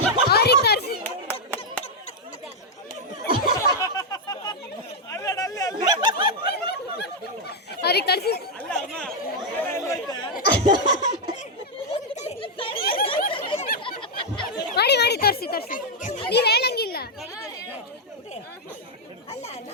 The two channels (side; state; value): both; normal; correlation -0.03